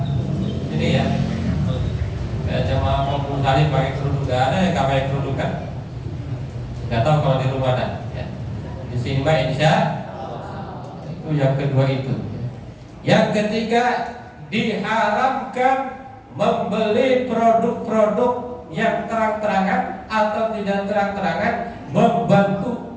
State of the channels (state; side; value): identical; both; correlation 1.00